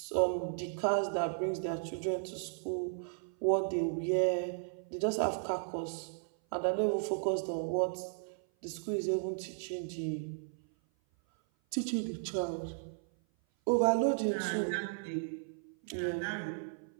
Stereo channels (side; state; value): left; silent; 54 dB below the other